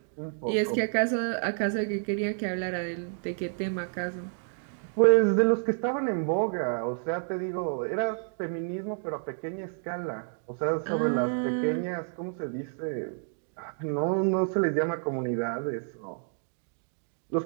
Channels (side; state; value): left; silent; digital silence